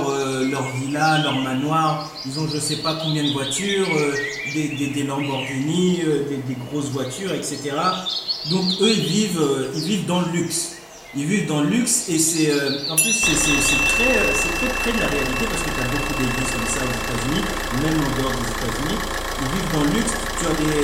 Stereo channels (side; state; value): both; identical; correlation 1.00